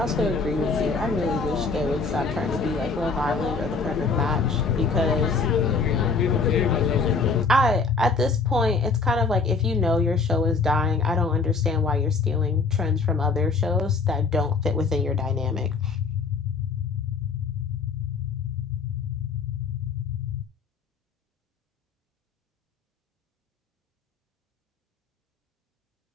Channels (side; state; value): right; quieter; 4.6 dB